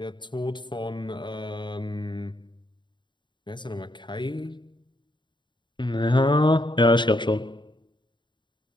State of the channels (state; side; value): late; right; 0.22 ms